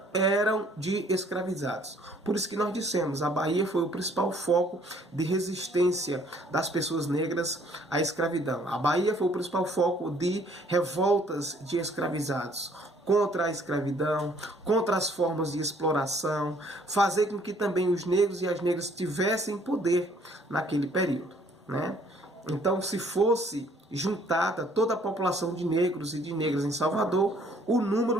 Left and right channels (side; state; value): both; normal; correlation 0.61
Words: eram de escravizados. Por isso que nós dissemos, a Bahia foi o principal foco de resistência das pessoas negras à escravidão. A Bahia foi o principal foco de revoltas de escravizados contra a escravidão, contra as formas de exploração, fazer com que também os negros e as negras tivessem poder naquele período, né? Então, se fosse juntada toda a população de negros e de negras em Salvador, o